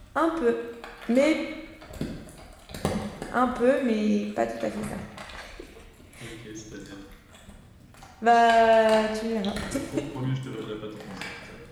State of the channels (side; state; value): both; identical; correlation 1.00